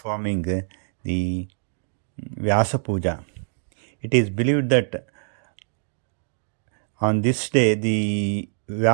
the Vyasa Puja. It is believed that on this day, the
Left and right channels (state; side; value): silent; left; digital silence